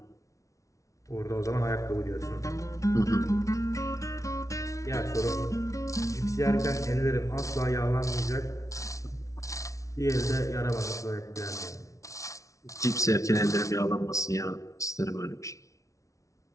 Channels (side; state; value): right; late; 0.15 ms